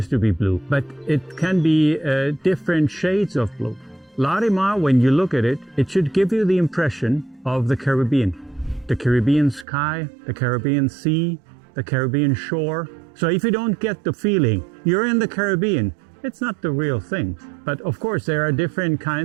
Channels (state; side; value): drops out; left; at 9.7 s